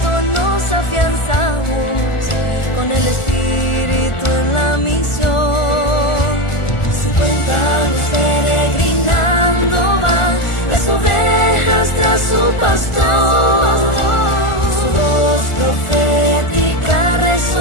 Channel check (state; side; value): late; right; 1.4 ms